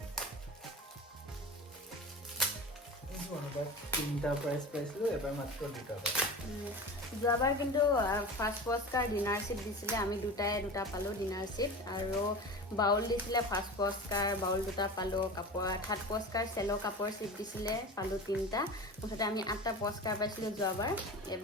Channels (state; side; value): normal; both; correlation 0.32